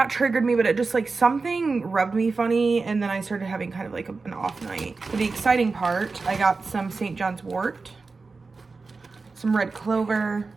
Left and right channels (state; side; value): quieter; left; 4.1 dB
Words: triggered me, but it just like something rubbed me funny, and then I started having kind of like an off night. For the exciting part, I got some St. John's wort, some red clover,